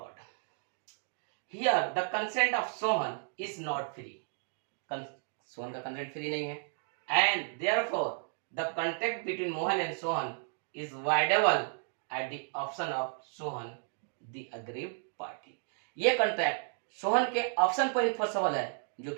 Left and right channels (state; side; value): silent; left; digital silence